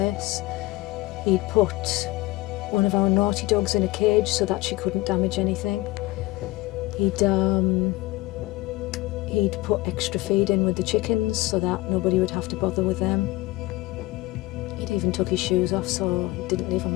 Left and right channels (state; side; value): quieter; right; 19.3 dB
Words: He'd put one of our naughty dogs in a cage so that she couldn't damage anything. He'd put extra feed in with the chickens so that nobody would have to bother with them. He'd even took his shoes off so he didn't leave a